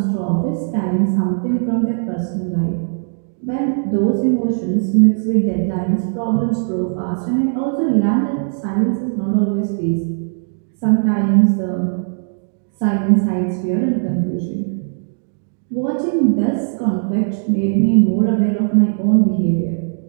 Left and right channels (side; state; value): left; silent; digital silence